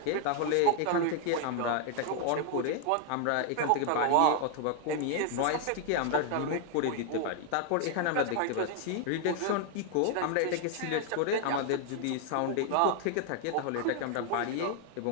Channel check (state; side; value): different; both; correlation 0.00